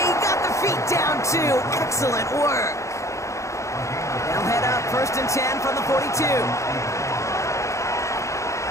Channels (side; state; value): right; late; 0.15 ms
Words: he got the feet down too. And a Excellent work. They'll head up 1st and 10 from the 42.